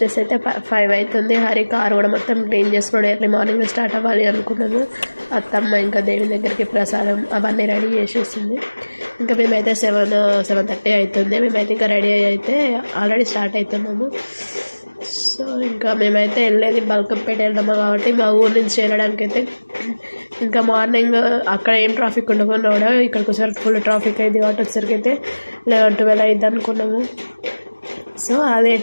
అయితే 5 అవుతుంది. హరి కార్ కూడా మొత్తం క్లీన్ చేసుకుని ఎర్లీ మార్నింగ్ స్టార్ట్ అవ్వాలి అనుకున్నాము. అత్తమ్మ ఇంకా దేవుని దగ్గరికి ప్రసాదం అవన్నీ రెడీ చేసేసింది. ఇంకా మేమైతే 7:30 అవుతుంది. మేమైతే ఇంకా రెడీ అయితే ఆల్రెడీ స్టార్ట్ అవుతున్నాము. సో ఇంకా మేమైతే వెళ్ళేది బల్కంపేట వెళ్దాము కాబట్టి మా ఊరు నుంచి వెళ్ళడానికి అయితే ఇంకా మార్నింగ్ అక్కడ ఏం ట్రాఫిక్ ఉండకుండా కూడా ఇక్కడికి వచ్చేసరికి ఫుల్ ట్రాఫిక్ అయింది కాబట్టి వచ్చేసరికి అయితే 11-12 అయింది అనుకున్నాము. సో అదే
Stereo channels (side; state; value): both; inverted; correlation -1.00